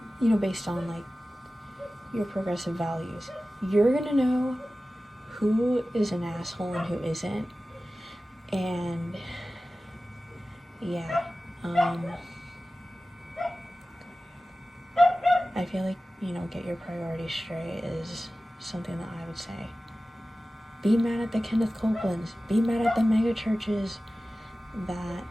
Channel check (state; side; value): normal; both; correlation 0.96